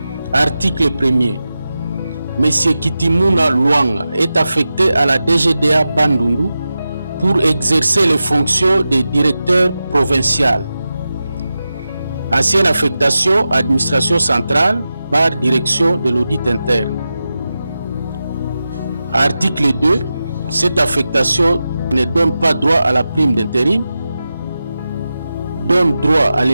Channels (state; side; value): inverted; both; correlation -0.92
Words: article 1er, M. Kitimuna Luanga est affecté à la DGDA Bandundu pour exercer les fonctions de directeur provincial. Ancienne affectation, administration centrale, direction de l'audit interne. Article 2. Cette affectation ne donne pas droit à la prime d'intérim, donne droit à